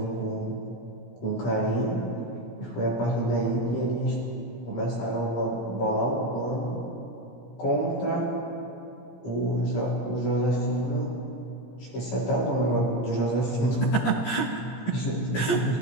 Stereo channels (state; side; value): late; right; 17 ms